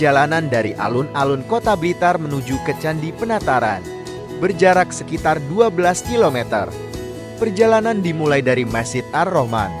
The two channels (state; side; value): identical; both; correlation 1.00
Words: dari alun-alun Kota Blitar menuju ke Candi Penataran, berjarak sekitar 12 km. Perjalanan dimulai dari Masjid Ar-Rahman